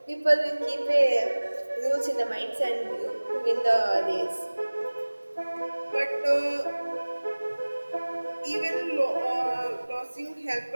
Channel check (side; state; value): both; inverted; correlation -1.00